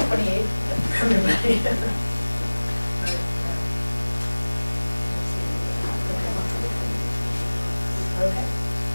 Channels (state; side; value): inverted; both; correlation -1.00